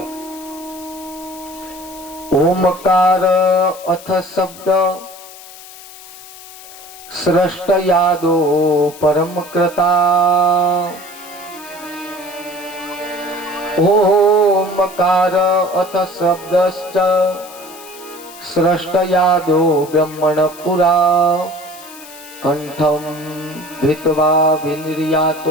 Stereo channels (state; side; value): noise; left; hiss, 18 dB below the sound